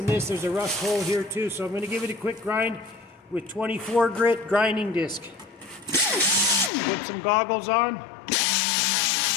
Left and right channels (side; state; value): right; drops out; at 6.7 s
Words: this. There's a rust hole here too, so I'm going to give it a quick grind with 24 grit grinding disc. Put some goggles on.